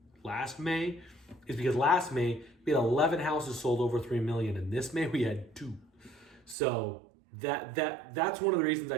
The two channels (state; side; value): drops out; left; at 6.6 s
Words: May, is because last May we had 11 houses sold over 3 million, and this May we had 2. So that's one of the reasons